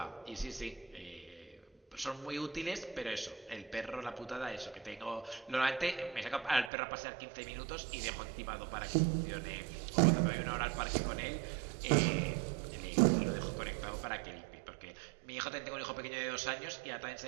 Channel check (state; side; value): drops out; left; at 6.7 s